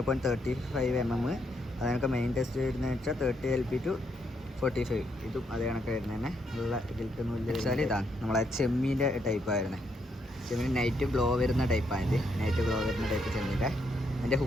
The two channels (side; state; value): both; normal; correlation 0.76